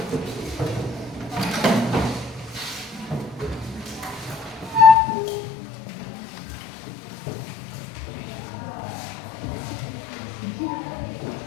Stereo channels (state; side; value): drops out; right; at 5.0 s